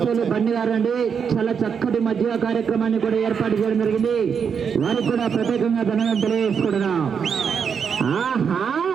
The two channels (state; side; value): quieter; left; 6.7 dB